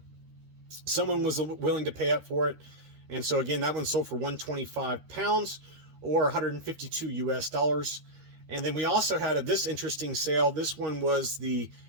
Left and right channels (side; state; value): left; late; 13 ms